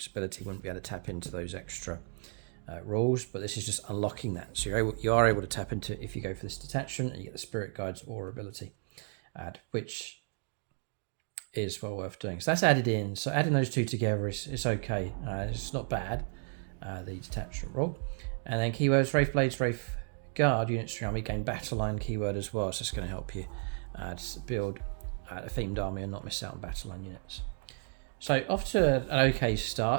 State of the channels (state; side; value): silent; left; 56 dB below the other